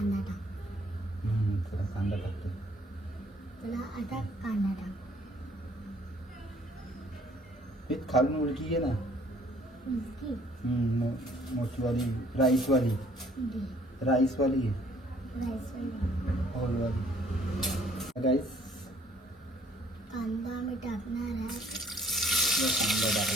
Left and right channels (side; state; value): both; normal; correlation 0.60